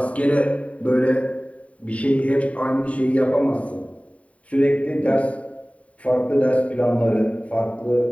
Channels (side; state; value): right; late; 0.066 ms